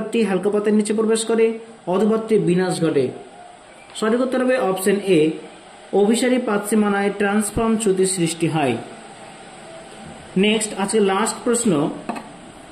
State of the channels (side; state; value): both; identical; correlation 1.00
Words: হালকা পাতের নিচে প্রবেশ করে, অধপাতটির বিনাশ ঘটে। সঠিক উত্তর হবে অপশন এ অভিসারী পাত সীমানায় ট্রান্সফর্ম চ্যুতি সৃষ্টি হয়। নেক্সট, আজকে লাস্ট প্রশ্ন,